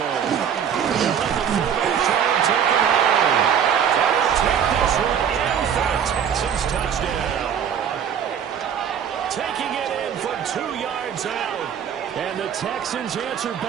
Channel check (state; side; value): quieter; left; 8.3 dB